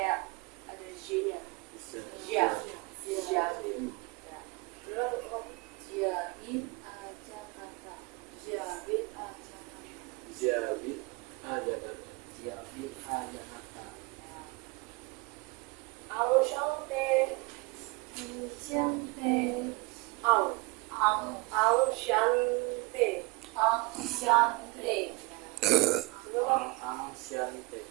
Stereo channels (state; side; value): quieter; left; 25.9 dB